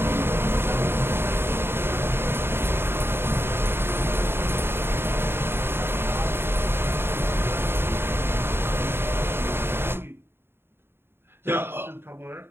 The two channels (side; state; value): left; late; 0.11 ms